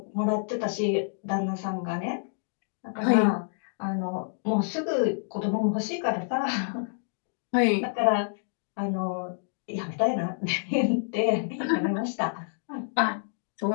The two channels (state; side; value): silent; right; digital silence